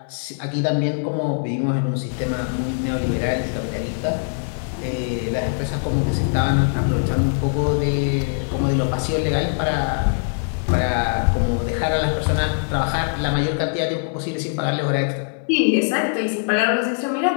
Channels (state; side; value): silent; right; 61 dB below the other